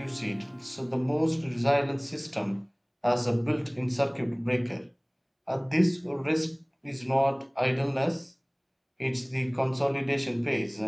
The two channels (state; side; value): identical; both; correlation 1.00